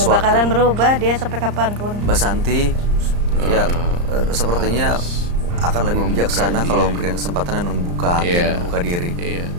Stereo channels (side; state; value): left; late; 34 ms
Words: sesuatu. bakalan berubah dia sampai kapanpun. Mbak Santi ya sepertinya akan lebih bijaksana kalau memberikan kesempatan dan membuka hati, dan membuka diri. Iya.